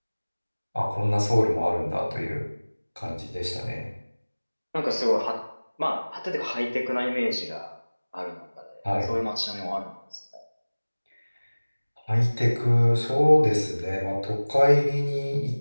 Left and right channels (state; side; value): inverted; both; correlation -1.00